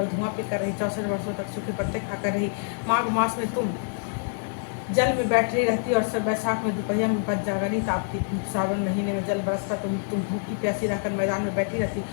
धुआं पीकर रही। 64 वर्षों तक सूखे पत्ते खाकर रही। माघ मास में तुम जल में बैठ रही रहती और सब बैसाख में दोपहर में बच जागनी तापती। सावन महीने में जल बरसता तुम भूखी प्यासी रहकर मैदान में बैठी रहती।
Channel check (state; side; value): silent; right; digital silence